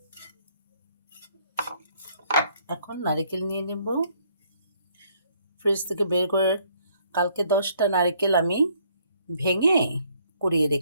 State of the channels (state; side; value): inverted; both; correlation -0.66